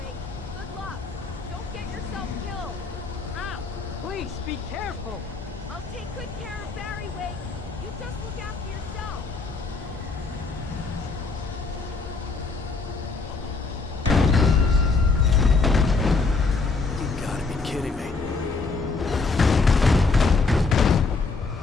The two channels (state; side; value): quieter; right; 4.1 dB